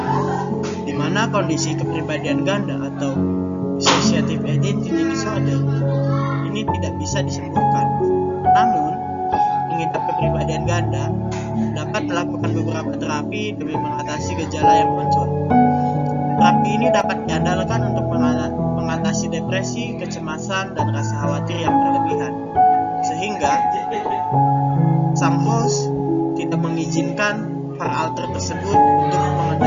di mana kondisi kepribadian ganda atau dissociative identity disorder ini tidak bisa disembuhkan. Namun, mengidap kepribadian ganda dapat melakukan beberapa terapi demi mengatasi gejala yang muncul. Terapi ini dapat diandalkan untuk mengatasi depresi, kecemasan, dan rasa khawatir yang berlebihan, sehingga sang host tidak mengizinkan para alter tersebut untuk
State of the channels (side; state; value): both; identical; correlation 1.00